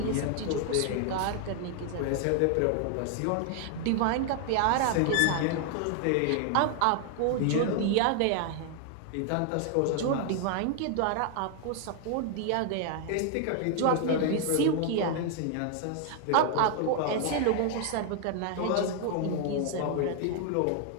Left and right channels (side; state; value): both; different; correlation 0.00